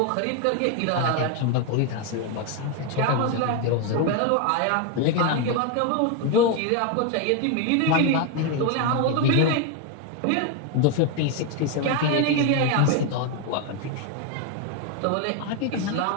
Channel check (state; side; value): different; both; correlation 0.01